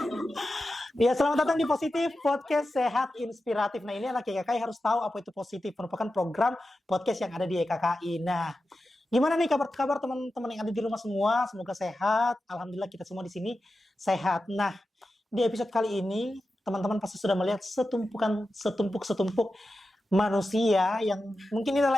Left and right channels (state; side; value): normal; both; correlation 0.92